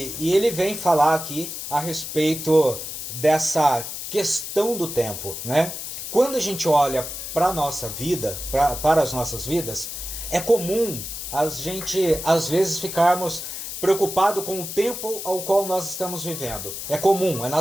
ele vem falar aqui a respeito dessa questão do tempo, né? Quando a gente olha para a nossa vida, para as nossas vidas, é comum a gente, às vezes, ficarmos preocupados com o tempo ao qual nós estamos vivendo. É comum, é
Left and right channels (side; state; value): left; noise; hiss, 7 dB below the sound